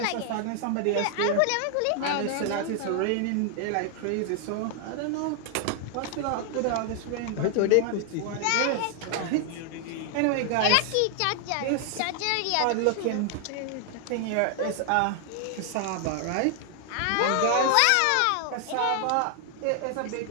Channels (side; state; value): both; different; correlation 0.00